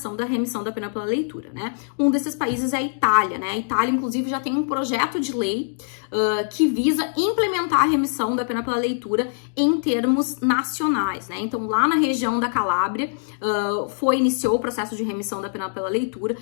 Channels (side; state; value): right; silent; digital silence